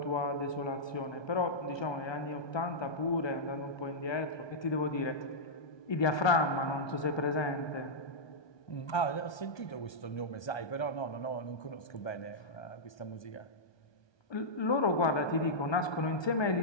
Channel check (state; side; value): late; right; 1.2 ms